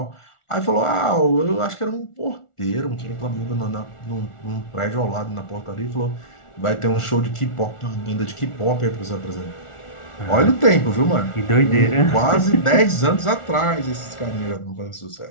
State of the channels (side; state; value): right; late; 1.4 ms